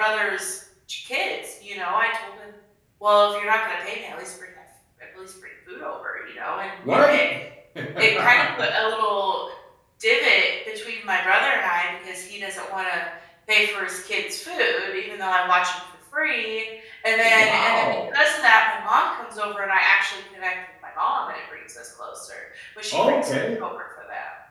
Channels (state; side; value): identical; both; correlation 1.00